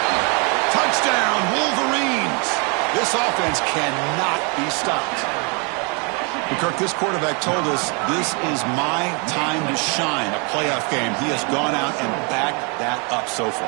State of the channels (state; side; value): quieter; left; 34.0 dB